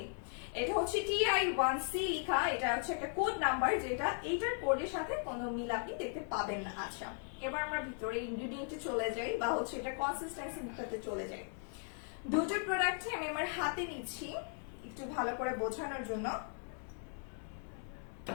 এটা হচ্ছে TI1C লেখা, এটা হচ্ছে একটা কোড নাম্বার, যেটা এইটার কোডের সাথে কোনো মিল আপনি দেখতে পাবেন না। আচ্ছা, এবার আমরা ভিতরে ইনগ্রেডিয়েন্টে চলে যাই, বা হচ্ছে এটা কনসিস্টেন্সি দিকটাতে চলে যাই। দুটো প্রোডাক্টই আমি আমার হাতে নিচ্ছি একটু ভালো করে বোঝানোর জন্য।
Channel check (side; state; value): right; silent; 53 dB below the other